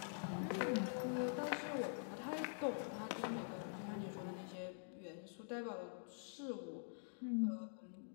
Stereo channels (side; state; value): right; silent; digital silence